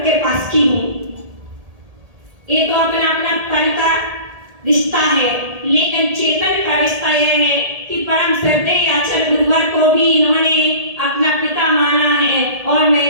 के पास की हूँ। ये तो अपना अपना तन का रिश्ता है, लेकिन चेतन का रिश्ता यह है कि परम श्रद्धेय आचार्य गुरुवर को भी इन्होंने अपना पिता माना है और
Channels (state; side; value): late; left; 1.8 ms